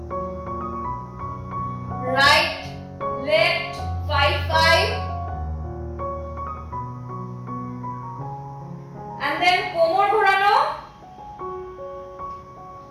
রাইট লেফট 5 and then কোমর ঘোরানো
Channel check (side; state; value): both; identical; correlation 1.00